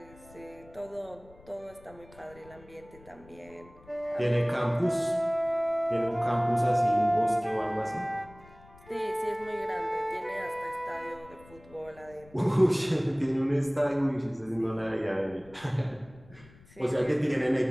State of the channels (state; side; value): noise; left; rumble, 24 dB below the sound